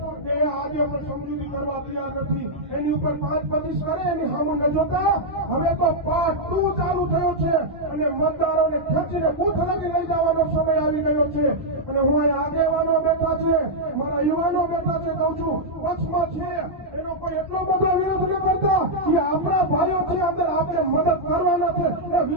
એ આજે પણ સમજૂતી કરવા તૈયાર નથી. એની ઉપર 5-25 કરે એની સામે ન જોતા હવે તો પાર્ટ 2 ચાલુ થયો છે અને મતદારોને ખેંચીને બૂથ લગી લઈ જવાનો સમય આવી ગયો છે. અને હું અહીં આગેવાનો બેઠા છે, મારા યુવાનો બેઠા છે, કહું છું પક્ષમાં છે એનો કોઈ એટલો બધો વિરોધ ન કરતા કે આપણા ભાઈઓ છે, અંદર આપણે મદદ કરવાના છે એ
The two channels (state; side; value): normal; both; correlation -0.05